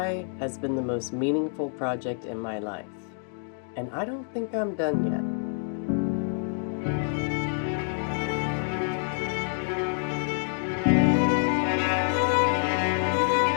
has been the most meaningful project in my life, and I don't think I'm done yet.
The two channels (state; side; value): silent; right; 56 dB below the other